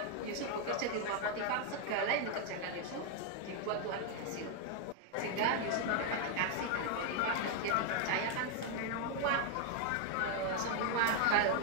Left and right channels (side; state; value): both; different; correlation 0.00